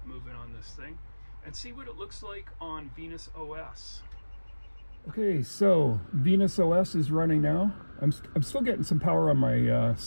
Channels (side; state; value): both; inverted; correlation -1.00